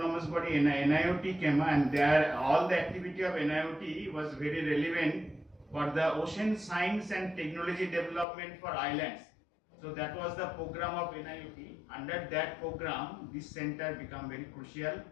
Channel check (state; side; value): drops out; right; at 8.2 s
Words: body NIOT came, and there all the activity of NIOT was very relevant for the ocean science and technology development for islands. So that was the program of NIOT. Under that program, this center became very crucial